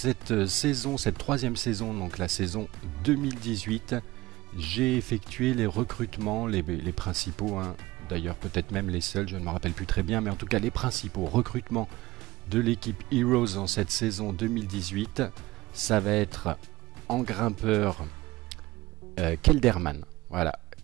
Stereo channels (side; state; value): left; quieter; 18.4 dB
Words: saison, cette troisième saison, donc la saison 2018, j'ai effectué les recrutements, les principaux, hein, d'ailleurs peut-être même les seuls, je ne me rappelle plus très bien, mais en tout cas les principaux recrutements de l'équipe Heroes en cette saison 2018, ça va être en grimpeur Kelderman. Voilà,